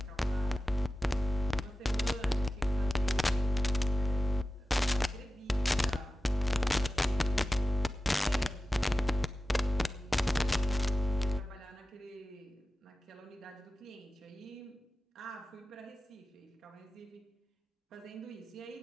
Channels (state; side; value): normal; both; correlation 0.94